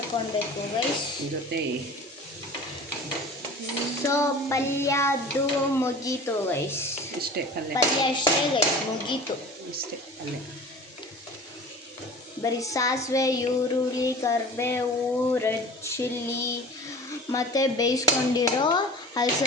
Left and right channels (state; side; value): normal; both; correlation 0.41